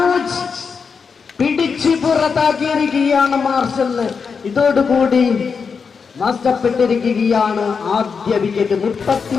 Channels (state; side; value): quieter; right; 5.6 dB